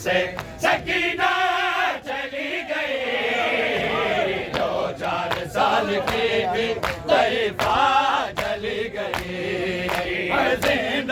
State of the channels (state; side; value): identical; both; correlation 1.00